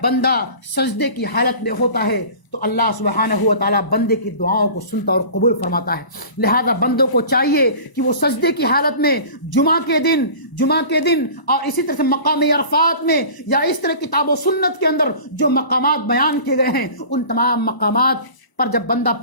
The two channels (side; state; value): right; late; 1.0 ms